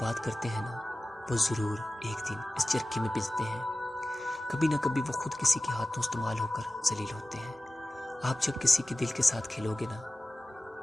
کرتے ہیں نا، وہ ضرور ایک دن اس چرکے میں پستے ہیں۔ کبھی نہ کبھی وہ خود کسی کے ہاتھوں استعمال ہو کر ذلیل ہوتے ہیں۔ آپ جب کسی کے دل کے ساتھ کھیلو گے نا،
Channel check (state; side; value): normal; both; correlation 0.96